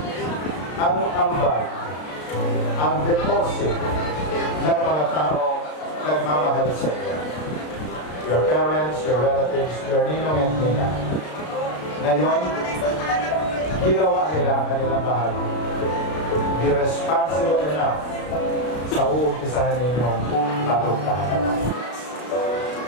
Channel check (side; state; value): right; late; 33 ms